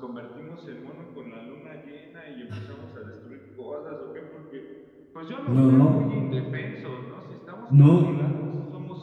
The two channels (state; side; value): identical; both; correlation 1.00